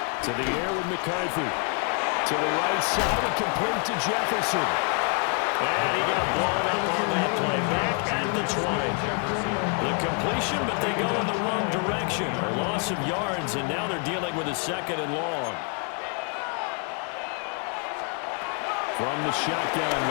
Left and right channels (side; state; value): right; quieter; 39.2 dB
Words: To the air with McCarthy. To the right side and complete to Jefferson. And he got blown up on that play. Back at the 20. The completion, but they go in the wrong direction. A loss of yards, and now they're dealing with a 2nd and long. From the shotgun,